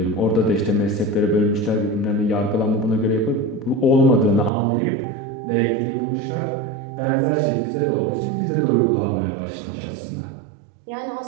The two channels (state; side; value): drops out; left; at 4.5 s